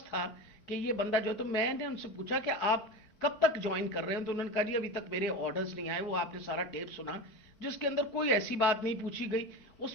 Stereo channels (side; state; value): right; late; 4.5 ms